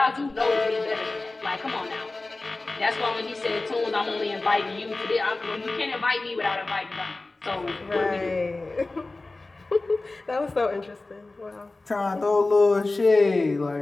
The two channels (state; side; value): quieter; right; 3.2 dB